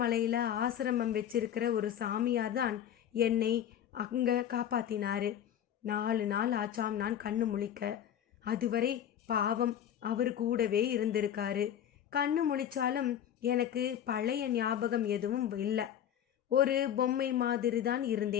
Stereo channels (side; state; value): right; quieter; 10.0 dB